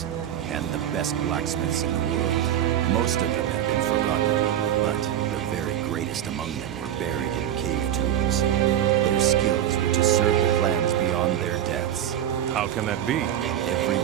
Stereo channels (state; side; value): quieter; left; 10.8 dB